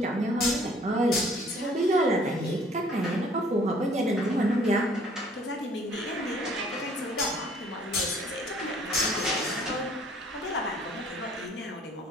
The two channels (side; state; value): both; normal; correlation 0.58